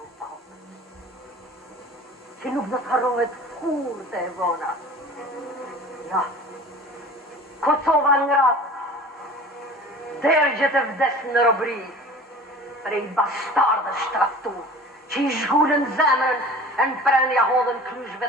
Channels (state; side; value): normal; both; correlation 0.42